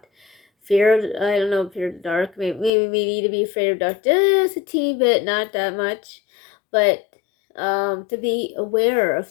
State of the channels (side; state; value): right; drops out; at 2.7 s